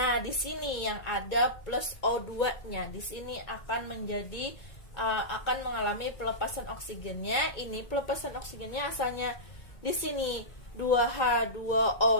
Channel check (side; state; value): right; late; 2.2 ms